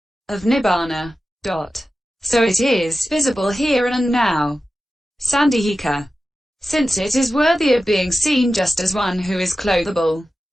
of nibbana. So it is visible here and now. Sandhika. Since it is worthy of being seen just as one who is clothable.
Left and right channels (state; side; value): normal; both; correlation 0.93